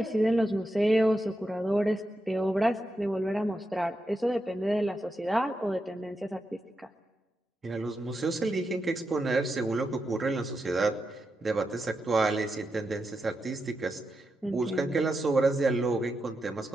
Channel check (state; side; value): normal; both; correlation 0.87